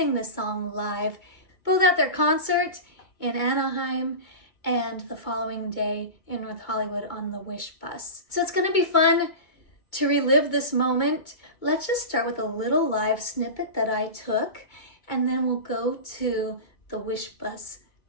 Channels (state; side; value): late; right; 2.2 ms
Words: this song live, both at their concert in Anaheim and the following day in North Hollywood on the Wishbus. So it's going to be fun to relive this moment. Let's just start with a little live snippet that I took, and then we'll go to the Wishbus